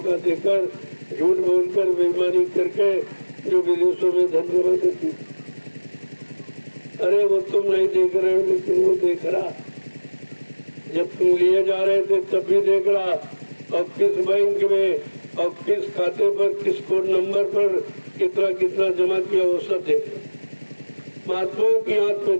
देकर झूठ बोलकर बेईमानी करके जो विदेशों में धन जमा करती। अरे वो तुम नहीं देख रहे हो, लेकिन वो देख रहा। जब तुम लिए जा रहे थे तब भी देख रहा, और किस बैंक में और किस खाते पर किस कोड नंबर पर कितना कितना जमा किया वो सब देख रहा। महात्माओं की आंख में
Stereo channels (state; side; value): inverted; both; correlation -1.00